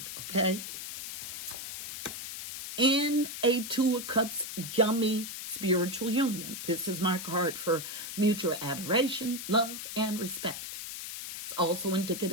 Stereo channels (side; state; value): left; noise; hiss, 8 dB below the sound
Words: okay? In a 2 of Cups, yummy spiritual union. This is my card for mutual adoration, love, and respect. It's also